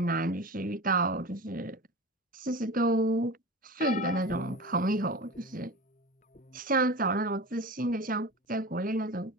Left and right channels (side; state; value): both; normal; correlation 0.31